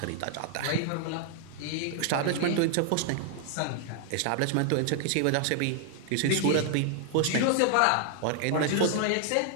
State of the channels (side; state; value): both; different; correlation 0.00